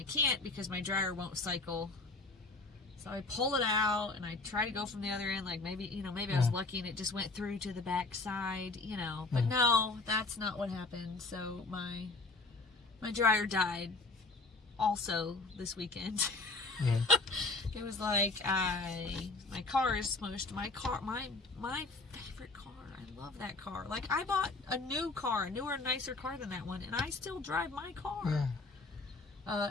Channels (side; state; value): right; quieter; 3.5 dB